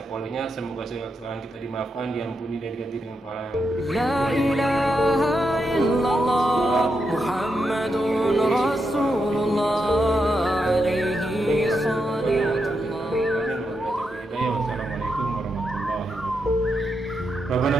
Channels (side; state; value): both; normal; correlation 0.84